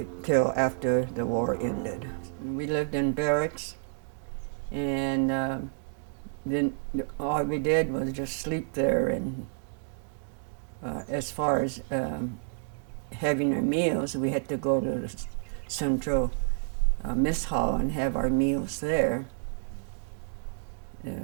after the war ended. We lived in barracks, and then all we did was just sleep there. And as far as having our meals, we had to go to the central mess hall and have our meals there.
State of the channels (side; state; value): left; silent; digital silence